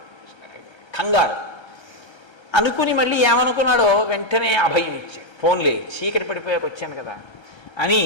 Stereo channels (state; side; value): late; right; 1.3 ms